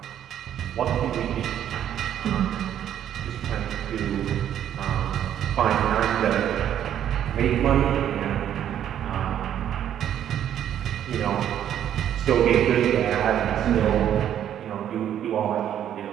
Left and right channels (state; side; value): quieter; left; 10.3 dB